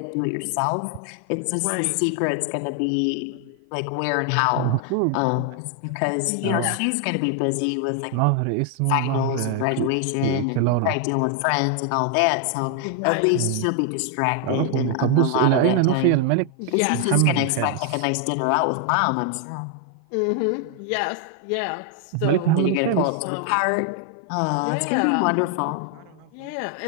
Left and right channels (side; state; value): both; different; correlation 0.00